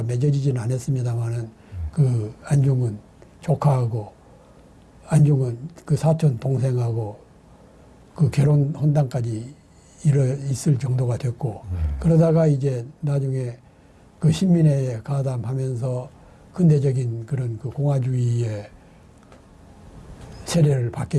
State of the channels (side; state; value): both; identical; correlation 1.00